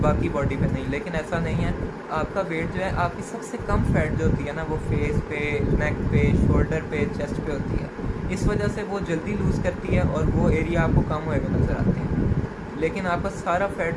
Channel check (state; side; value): identical; both; correlation 1.00